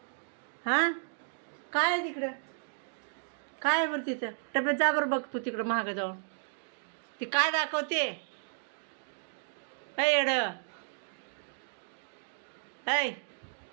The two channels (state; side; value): silent; left; digital silence